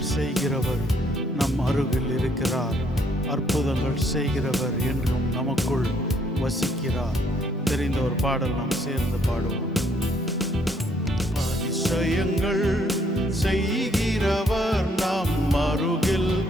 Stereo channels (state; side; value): normal; both; correlation 0.68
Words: செய்கிறவர் நம் அருகில் இருக்கிறார். அற்புதங்கள் செய்கிறவர் என்றும் நமக்குள் வசிக்கிறார். தெரிந்த ஒரு பாடல் நாம் சேர்ந்து பாடுவோம். அதிசயங்கள் செய்கிறவர் நம் அருகில்